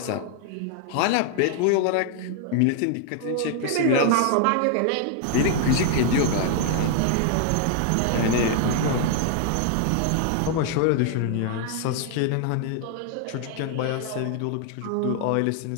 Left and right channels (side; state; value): both; different; correlation 0.00